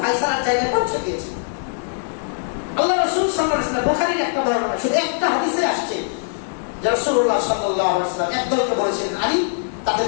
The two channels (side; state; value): right; silent; digital silence